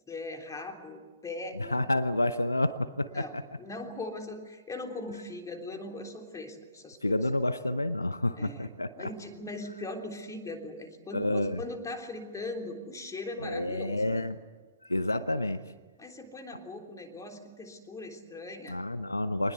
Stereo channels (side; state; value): both; inverted; correlation -0.76